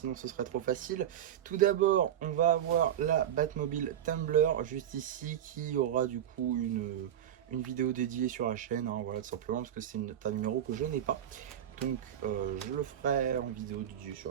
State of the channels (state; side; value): quieter; left; 10.4 dB